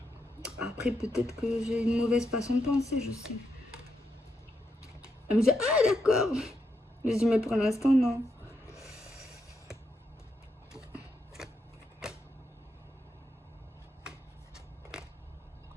Après, peut-être que j'ai une mauvaise façon de penser, je sais. Elle me dit, ah, d'accord. Je dis, mais pour l'instant, non.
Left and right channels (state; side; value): normal; both; correlation 0.82